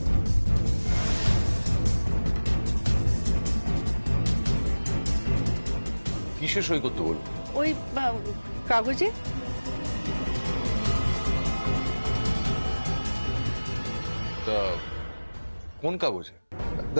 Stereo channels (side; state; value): both; inverted; correlation -1.00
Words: কিসে সই করতে বলবো? ওই কাগজে। তা কোন কাগজে?